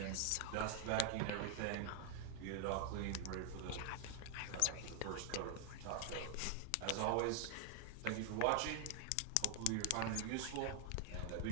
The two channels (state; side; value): different; both; correlation 0.00